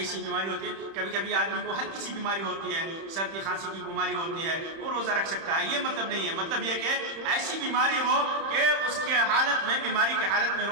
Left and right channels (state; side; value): late; left; 31 ms